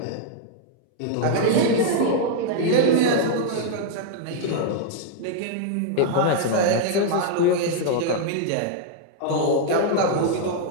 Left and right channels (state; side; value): different; both; correlation -0.01